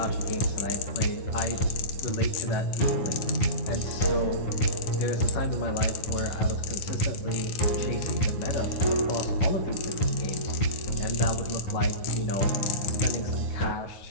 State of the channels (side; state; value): right; late; 11 ms